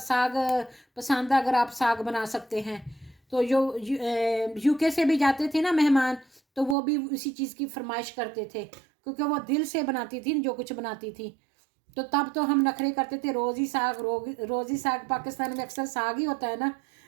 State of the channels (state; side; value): drops out; left; at 6.8 s